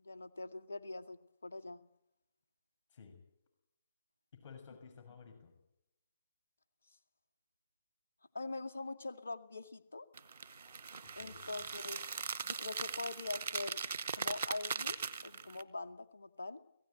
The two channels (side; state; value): both; inverted; correlation -0.77